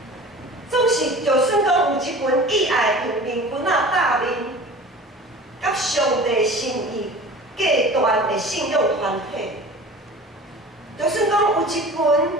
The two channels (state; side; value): normal; both; correlation 0.40